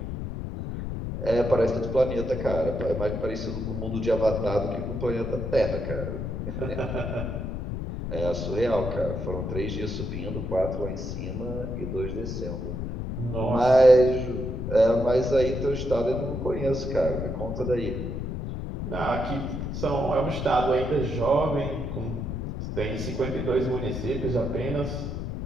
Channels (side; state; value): left; noise; rumble, 4 dB below the sound